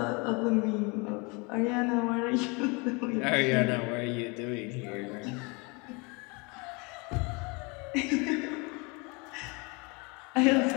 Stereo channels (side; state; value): right; quieter; 29.4 dB